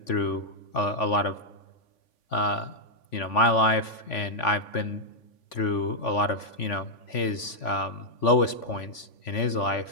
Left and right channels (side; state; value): right; late; 3.5 ms